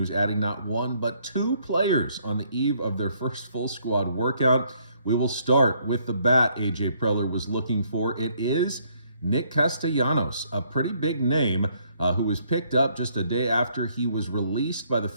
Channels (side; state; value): both; inverted; correlation -0.68